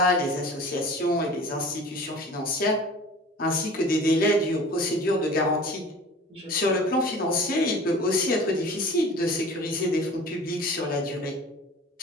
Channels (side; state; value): both; normal; correlation 0.42